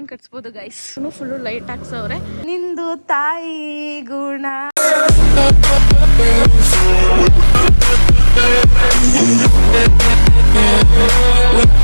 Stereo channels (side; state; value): both; inverted; correlation -1.00